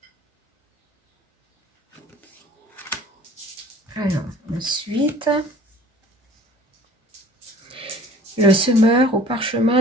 » Alors, ensuite, le semeur au parchemin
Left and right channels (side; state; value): both; normal; correlation 0.49